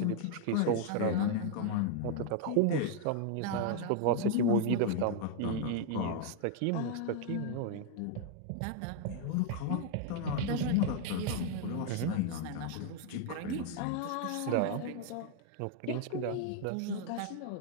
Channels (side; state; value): both; different; correlation 0.00